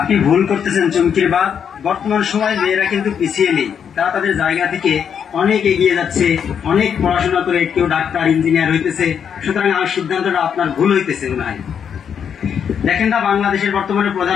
ভুল করতেছেন চুমকির বাপ, বর্তমান সময় মেয়েরা কিন্তু পিছিয়ে নেই, তারা তাদের জায়গা থেকে অনেক এগিয়ে যাচ্ছে, অনেক পড়াশোনা করে কেউ ডাক্তার ইঞ্জিনিয়ার হইতেছে, সুতরাং আমার সিদ্ধান্তটা আপনার ভুল হইতেছে মনে হয়। দেখেন না বাংলাদেশের বর্তমানে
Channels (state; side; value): quieter; right; 7.7 dB